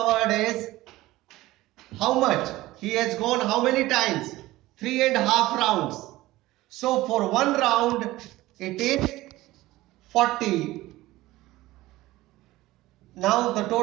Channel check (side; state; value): left; quieter; 17.6 dB